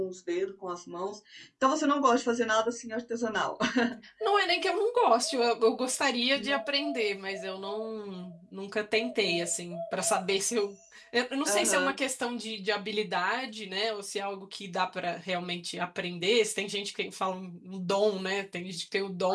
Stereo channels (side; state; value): both; identical; correlation 1.00